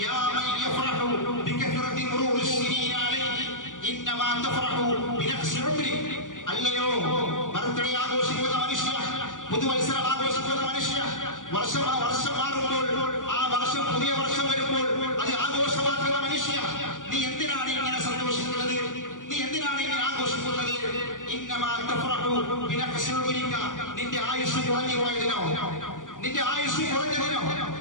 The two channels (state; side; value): late; right; 0.88 ms